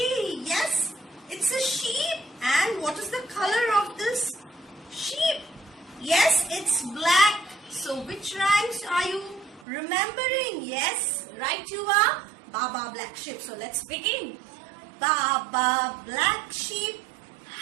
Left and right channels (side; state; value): left; drops out; at 9.7 s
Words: Yes, it's a sheep. And what is the color of this sheep? Yes, it's black. So which rhymes are you remembering? Yes, right you are. Baa Baa Black sheep. So let's begin. Baa Baa Black sheep,